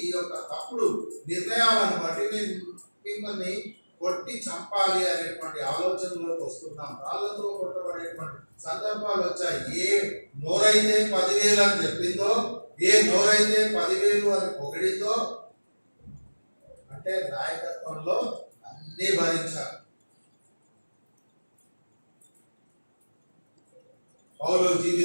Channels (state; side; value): inverted; both; correlation -1.00